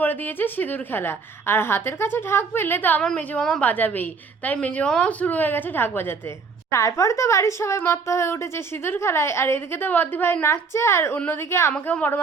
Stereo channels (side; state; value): left; quieter; 5.0 dB